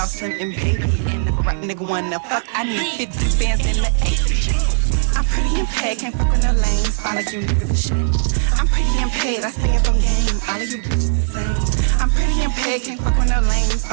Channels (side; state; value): left; silent; 67 dB below the other